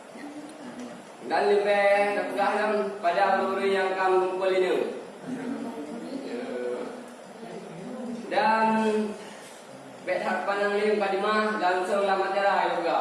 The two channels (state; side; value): identical; both; correlation 1.00